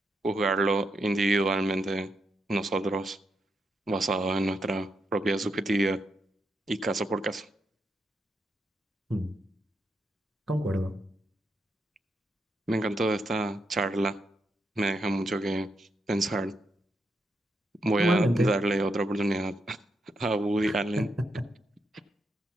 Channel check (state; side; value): normal; both; correlation 0.82